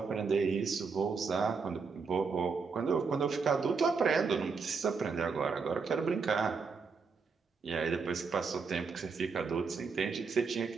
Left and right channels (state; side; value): quieter; left; 5.0 dB